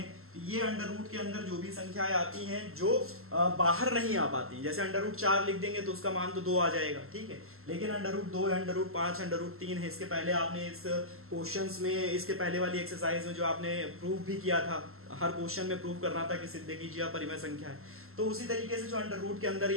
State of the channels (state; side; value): late; left; 0.62 ms